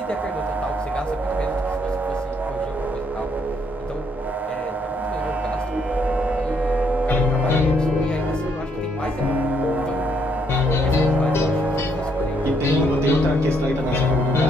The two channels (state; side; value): normal; both; correlation 0.72